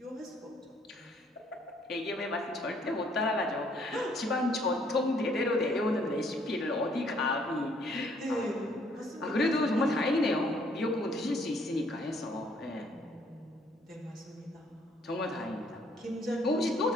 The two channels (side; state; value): both; normal; correlation 0.65